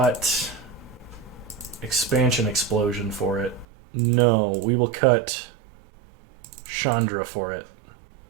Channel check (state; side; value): drops out; left; at 3.7 s